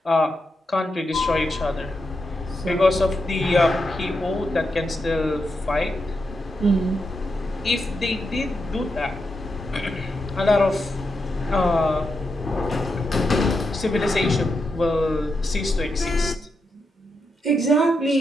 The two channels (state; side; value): normal; both; correlation 0.85